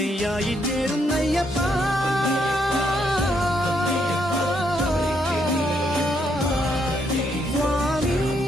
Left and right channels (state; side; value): normal; both; correlation 0.75